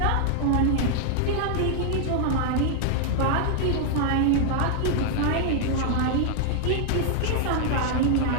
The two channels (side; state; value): both; different; correlation 0.00